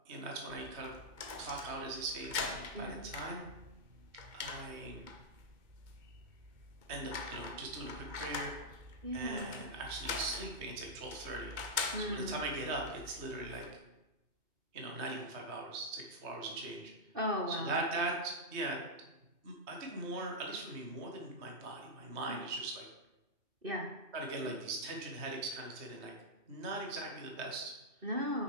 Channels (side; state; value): left; late; 2.6 ms